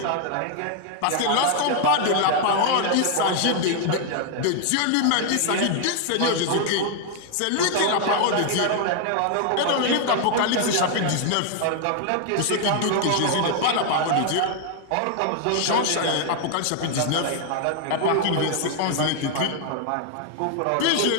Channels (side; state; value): both; different; correlation 0.00